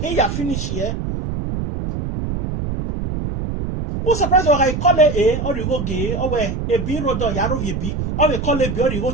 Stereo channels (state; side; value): noise; right; rumble, 4 dB below the sound